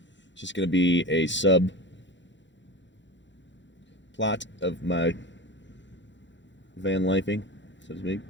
It's just going to be a sub plot of my van lifing, so to speak.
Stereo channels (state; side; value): late; right; 0.53 ms